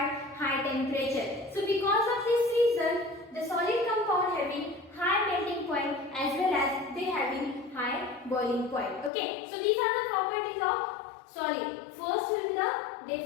high temperature. So because of this reason, the solid compound having high melting point as well as they having high boiling point. Okay, so these are the properties of solid. First will be the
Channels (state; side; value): drops out; right; at 9.1 s